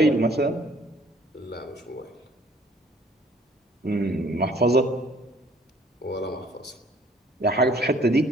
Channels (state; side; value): normal; both; correlation 0.58